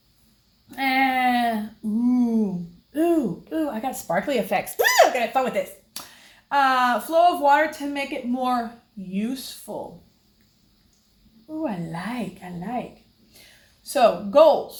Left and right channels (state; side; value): identical; both; correlation 1.00